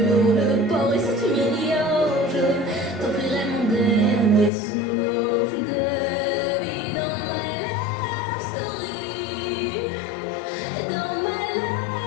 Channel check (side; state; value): right; drops out; at 4.5 s